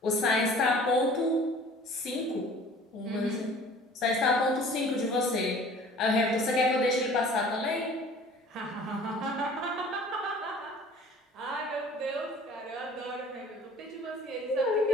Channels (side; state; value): both; normal; correlation 0.48